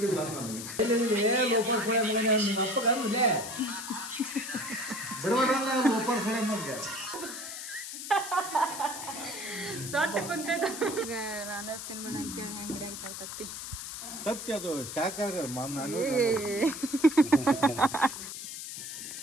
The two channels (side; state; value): left; noise; hiss, 8 dB below the sound